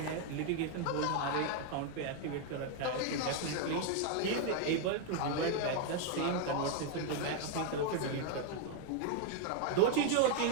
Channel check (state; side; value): different; both; correlation 0.00